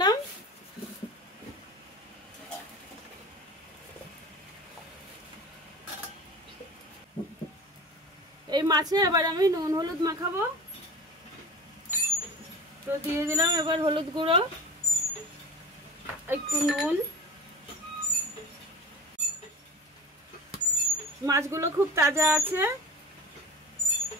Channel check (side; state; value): both; normal; correlation 0.35